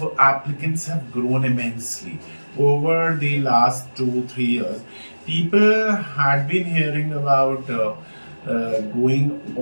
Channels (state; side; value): inverted; both; correlation -1.00